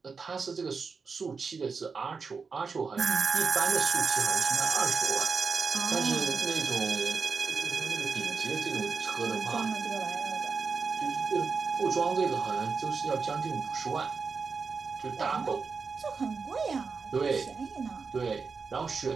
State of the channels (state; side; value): quieter; left; 5.0 dB